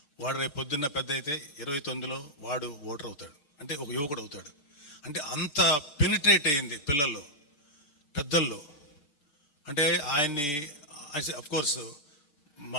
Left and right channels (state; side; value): late; right; 6.8 ms